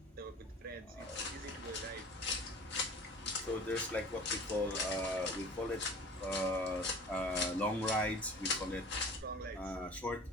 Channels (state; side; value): normal; both; correlation 0.43